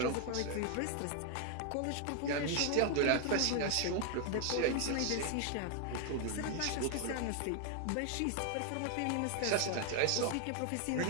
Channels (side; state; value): both; different; correlation 0.00